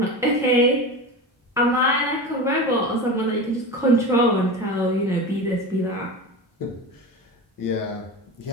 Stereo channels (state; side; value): normal; both; correlation 0.27